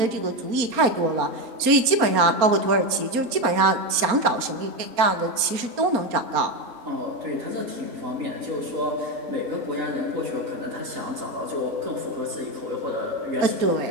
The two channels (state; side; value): late; left; 4.3 ms